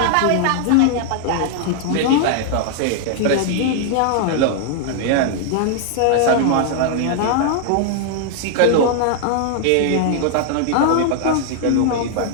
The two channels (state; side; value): different; both; correlation 0.00